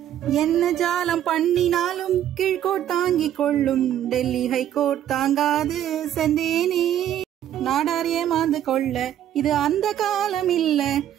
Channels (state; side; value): quieter; left; 11.1 dB